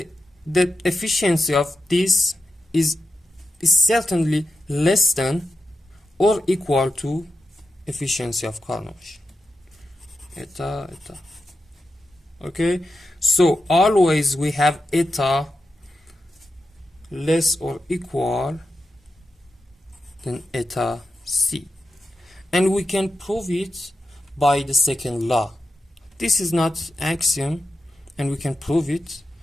efficiency of this is certainly less than or equal to efficiency of Carnot machine. Eta. Okay, so always we have eta less or equal than eta c, and we can prove it by the second law. This is not axiom, and we can prove it.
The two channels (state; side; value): normal; both; correlation 0.90